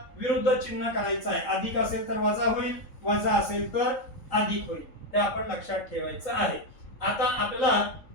विरुद्ध चिन्ह करायचं आहे. अधिक असेल तर वजा होईल, वजा असेल तर अधिक होईल. हे आपण लक्षात ठेवायचं आहे. आता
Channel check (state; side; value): late; right; 3.8 ms